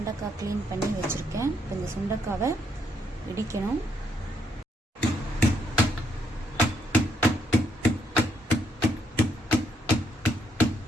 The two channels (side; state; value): both; normal; correlation 0.73